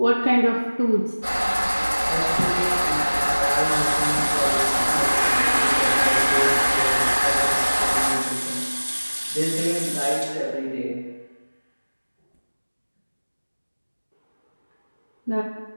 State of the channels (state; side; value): inverted; both; correlation -1.00